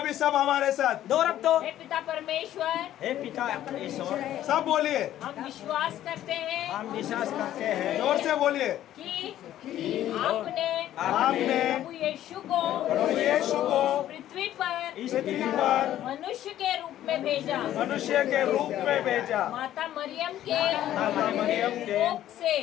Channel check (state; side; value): quieter; right; 12.5 dB